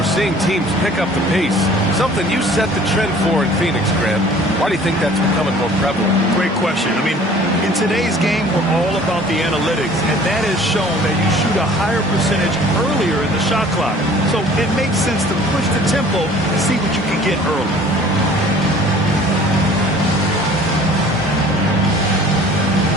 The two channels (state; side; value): normal; both; correlation 0.50